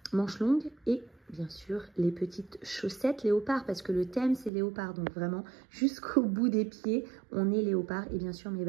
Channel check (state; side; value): drops out; left; at 4.5 s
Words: Manches longues et bien sûr les petites chaussettes léopard, parce que le thème c'est léopard. Donc vraiment jusqu'au bout des pieds, on est léopard. Et bien sûr mes